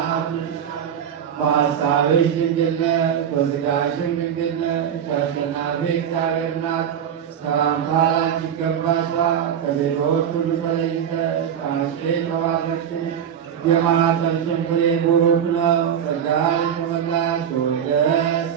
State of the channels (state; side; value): quieter; left; 8.7 dB